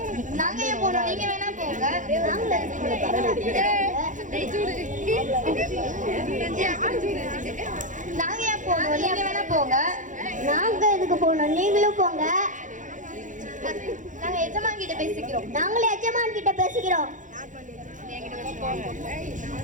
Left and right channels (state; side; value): late; left; 0.37 ms